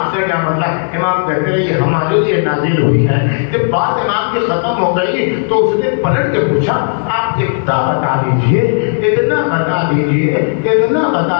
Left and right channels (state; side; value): silent; right; digital silence